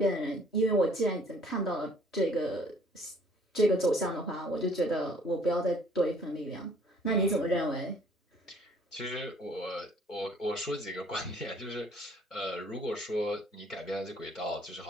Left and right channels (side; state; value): both; normal; correlation 0.58